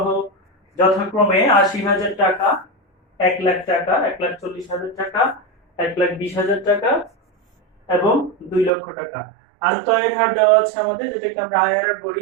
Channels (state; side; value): drops out; left; at 8.7 s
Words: যথাক্রমে 80,000 টাকা, 1 লাখ টাকা, 1,40,000 টাকা, 1,20,000 টাকা এবং 2 লক্ষ টাকা। আন্তঃআয়ের হার দেওয়া আছে আমাদের, যেটাকে আমরা আইআরআর